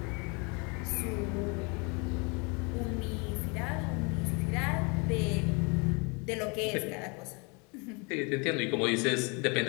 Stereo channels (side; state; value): right; quieter; 31.6 dB